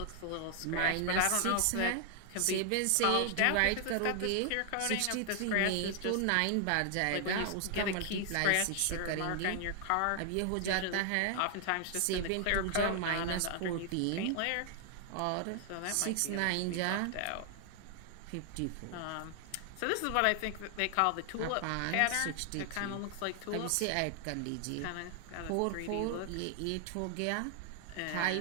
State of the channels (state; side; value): different; both; correlation 0.00